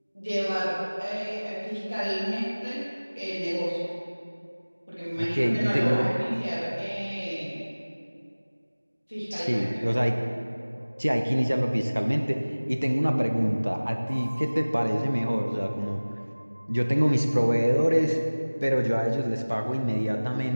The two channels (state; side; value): inverted; both; correlation -1.00